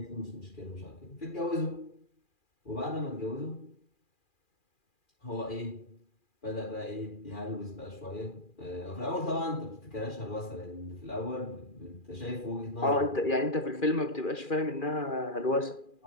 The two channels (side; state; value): right; late; 2.4 ms